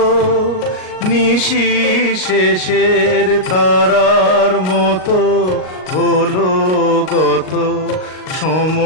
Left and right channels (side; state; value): right; late; 38 ms